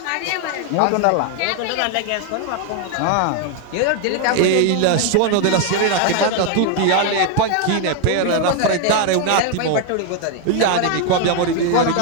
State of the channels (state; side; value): different; both; correlation 0.00